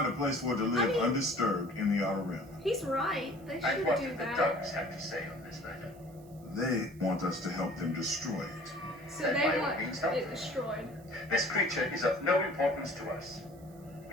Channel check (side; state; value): right; noise; hiss, 27 dB below the sound